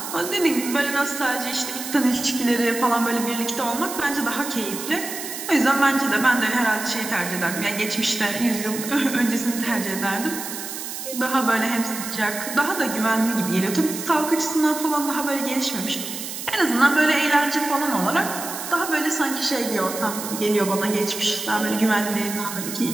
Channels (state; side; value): noise; right; hiss, 7 dB below the sound